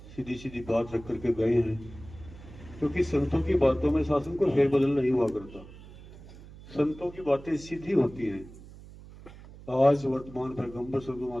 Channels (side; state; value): right; noise; hum, 18 dB below the sound